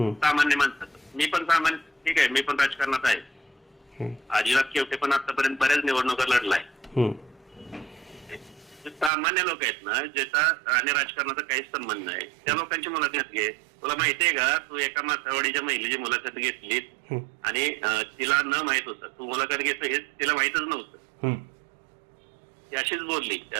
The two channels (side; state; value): left; drops out; at 9.1 s